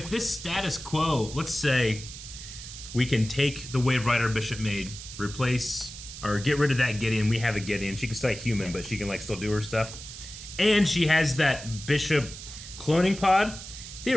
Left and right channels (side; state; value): right; noise; hiss, 12 dB below the sound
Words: this status quo, let's say, we can take the Wave Rider Bishop made, replace or get rid of that Gideon. We have a Gideon. She can stay human, but she can still do her stuff. And she has that Bishop cloning pod.